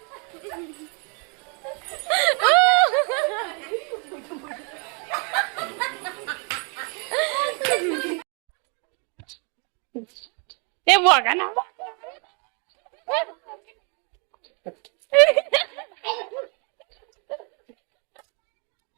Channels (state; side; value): quieter; left; 36.6 dB